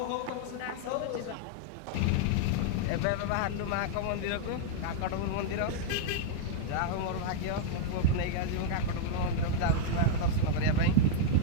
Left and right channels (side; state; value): both; different; correlation -0.01